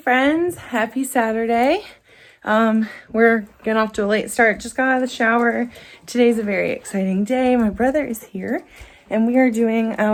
Happy Saturday. We're getting off to a late start. Just got out of the shower. Today's a very exciting day. My brother is here and we are doing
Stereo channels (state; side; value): identical; both; correlation 1.00